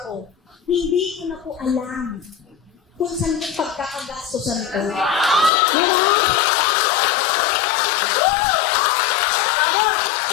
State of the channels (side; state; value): right; drops out; at 5.5 s